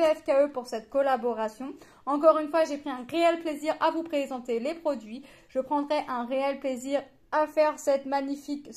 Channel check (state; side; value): identical; both; correlation 1.00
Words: pour cette collaboration. Encore une fois, j'ai pris un réel plaisir à vous présenter les produits. Je prendrai un réel plaisir à faire cette magnifique